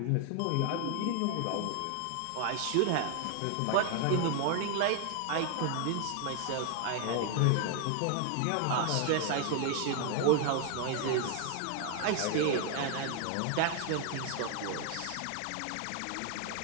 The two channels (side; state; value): both; different; correlation 0.00